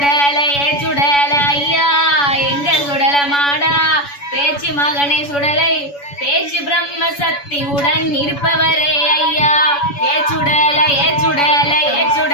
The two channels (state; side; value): late; right; 7.0 ms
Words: சுடல ஐயா எங்க சுடல மாடா பேச்சு மகனை சுடலை பேச்சு பிரம்ம சக்தியுடன் இருப்பவரே ஐயா சுடல சுடல